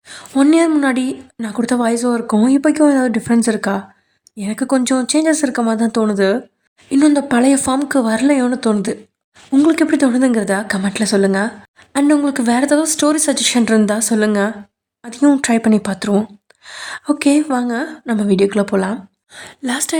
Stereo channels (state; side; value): identical; both; correlation 1.00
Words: 1 இயர் முன்னாடி நான் கொடுத்த வாய்ஸ் ஓவருக்கும் இப்போக்கும் ஏதாவது டிஃப்ரென்ஸ் இருக்கா? எனக்கு கொஞ்சம் சேஞ்சஸ் இருக்க மாதிரி தான் தோணுது. இன்னும் இந்த பழைய ஃபார்முக்கு வரலையோன்னு தோணுது. உங்களுக்கு எப்படி தோணுதுங்கிறத கமெண்ட்டில் சொல்லுங்கள். அண்ட் உங்களுக்கு வேறு ஏதாவது ஸ்டோரி சஜஷன் இருந்தால் சொல்லுங்கள், அதையும் ட்ரை பண்ணி பார்த்துருவோம். ஓகே, வாங்க நம்ம வீடியோக்குள்ளே போகலாம்.